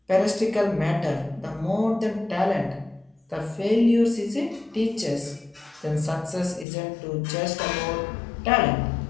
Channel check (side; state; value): right; drops out; at 6.7 s